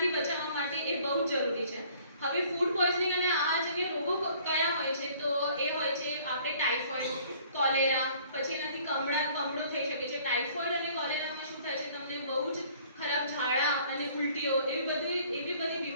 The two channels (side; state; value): both; inverted; correlation -0.56